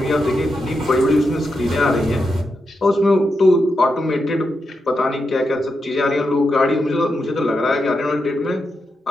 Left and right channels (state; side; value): normal; both; correlation 0.86